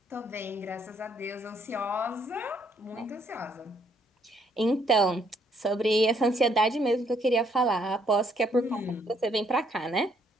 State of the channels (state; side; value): normal; both; correlation 0.69